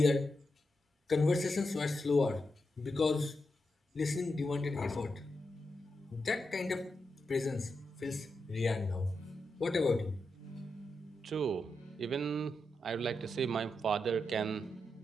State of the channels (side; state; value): both; normal; correlation 0.86